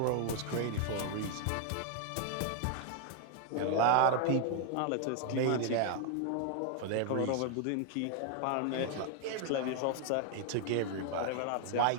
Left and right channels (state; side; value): different; both; correlation 0.00